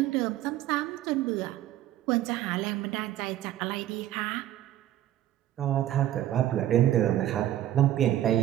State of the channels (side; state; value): left; quieter; 12.8 dB